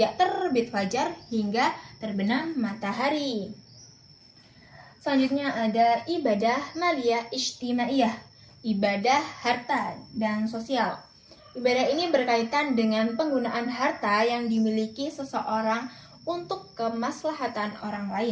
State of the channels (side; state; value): both; identical; correlation 1.00